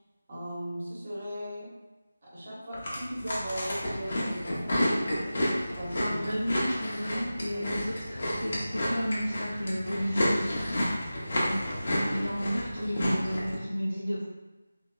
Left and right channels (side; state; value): both; inverted; correlation -0.95